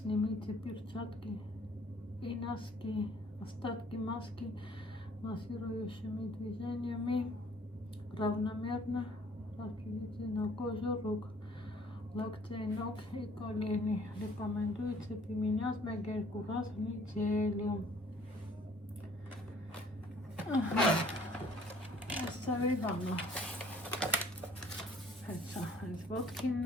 перчатки и носки. Остатки маски массирующими движениями равномерно распределите на кожу рук. Локтей, ног и колени. Рекомендуется применять 1-2 раз в неделю. Оставим. Это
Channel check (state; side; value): normal; both; correlation 0.58